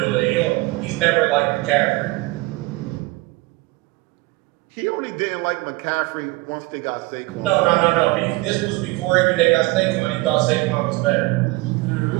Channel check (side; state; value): left; quieter; 21.8 dB